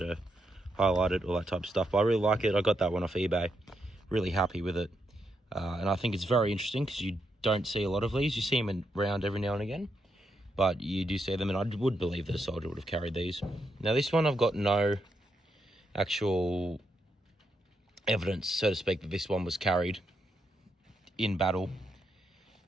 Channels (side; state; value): both; normal; correlation 0.81